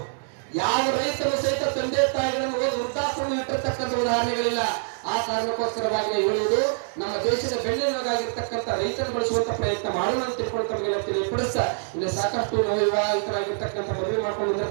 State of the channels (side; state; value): left; silent; digital silence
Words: ಯಾವ ರೈತರು ಸಹಿತ ತಂದೆ ತಾಯಿಗಳನ್ನು ವೃದ್ಧಾಶ್ರಮ ಇಟ್ಟಿರ್ತಕ್ಕಂಥ ಉದಾಹರಣೆಗಳಿಲ್ಲ. ಆ ಕಾರಣಕ್ಕೋಸ್ಕರವಾಗಿ ಹೇಳುವುದು, ನಮ್ಮ ದೇಶದ ಬೆನ್ನೆಲುಬಾಗಿರ್ತಕ್ಕಂಥ ರೈತರು ಬಳಸುವಂತ ಪ್ರಯತ್ನ ಮಾಡೋಣ ಅಂತ ತಿಳ್ಕೊಂಡು ತಮಗೆಲ್ಲ ತಿಳಿಪಡಿಸ. ಇಲ್ಲಿ ಸಾಕಷ್ಟು ವಿವಾಹಿತರಾಗಿರ್ತಕ್ಕಂಥ ಮದುವೆ ಮಾಡ್ಕೊಂಡು